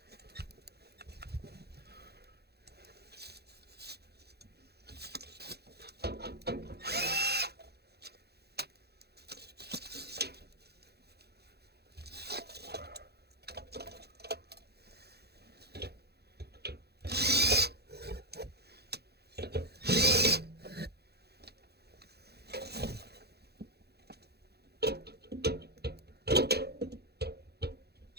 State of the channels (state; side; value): late; left; 0.47 ms